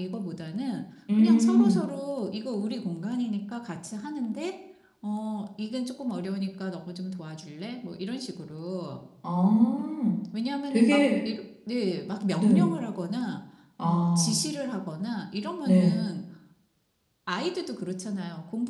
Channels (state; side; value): identical; both; correlation 1.00